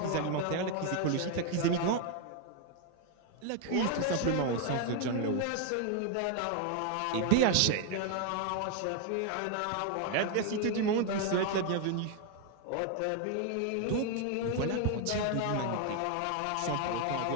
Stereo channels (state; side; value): different; both; correlation 0.00